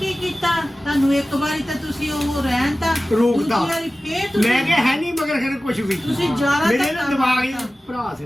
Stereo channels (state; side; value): normal; both; correlation 0.96